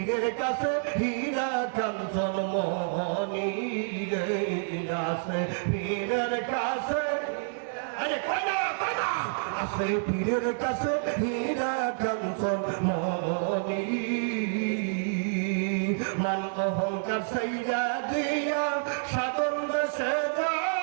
কাছে হীরা কাঞ্চন মনি রে আছে পীরের কাছে আরে কয়না আছে পীরের কাছে হীরা কাঞ্চন মনি মান সাইয়া দিয়া সাধন দেশে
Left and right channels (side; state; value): left; silent; 59 dB below the other